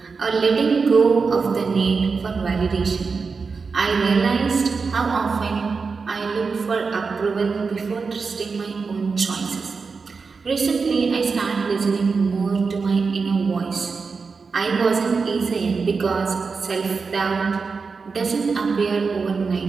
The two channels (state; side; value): quieter; left; 4.8 dB